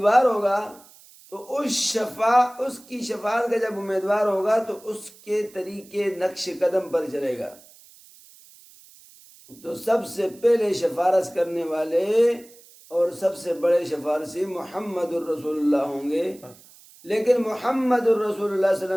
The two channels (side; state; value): right; noise; hiss, 24 dB below the sound